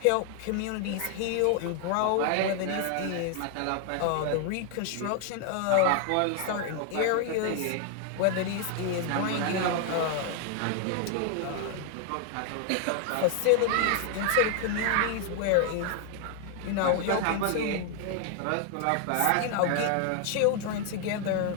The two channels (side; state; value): both; different; correlation 0.00